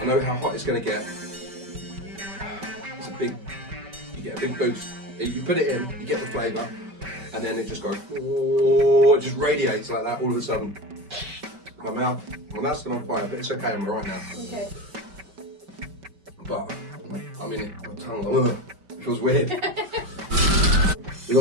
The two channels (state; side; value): late; left; 5.2 ms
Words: know how hot it's going to get. You get a big boost. You put it in, you get the flavour, and then it just goes, oh, it just radiates like that all of a sudden. My mouth's still on fire, but it's okay, I'm right now. Okay. But, I mean, my tongue, it feels weird. We